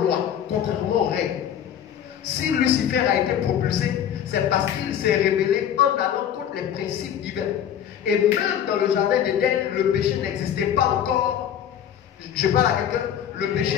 lois, contrairement aux règles. Si Lucifer a été propulsé, c'est parce qu'il s'est rébellé en allant contre les principes divins. Et même dans le jardin d'Éden, le péché n'existait pas encore. Je parle à quelqu'un, le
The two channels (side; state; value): right; quieter; 9.6 dB